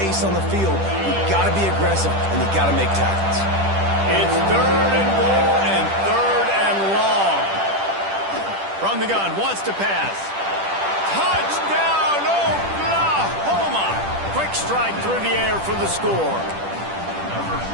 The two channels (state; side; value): late; left; 10 ms